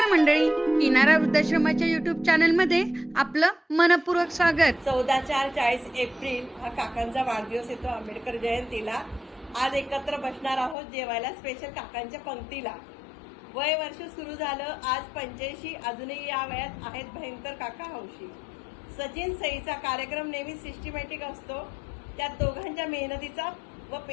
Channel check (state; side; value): drops out; right; at 10.8 s